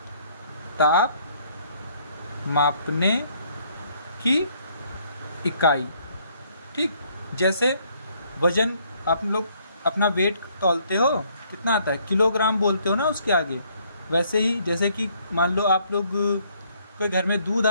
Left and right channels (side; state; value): both; inverted; correlation -0.66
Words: ताप मापने की इकाई। ठीक, जैसे वजन, आप लोग अपना वेट तौलते हो, कितना आता है, किलोग्राम बोलते हो ना उसके आगे। वैसे ही जैसे कि मान लो आप लोग कोई घर में दूध